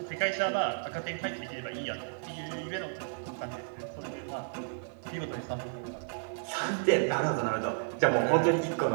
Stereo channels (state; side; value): silent; left; 56 dB below the other